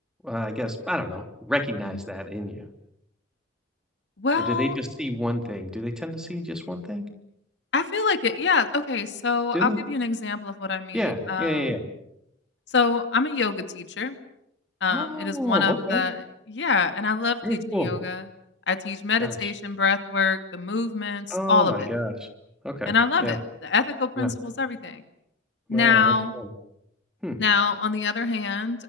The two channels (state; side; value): quieter; right; 3.6 dB